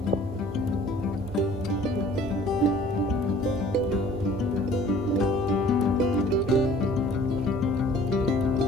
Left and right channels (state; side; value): normal; both; correlation 0.51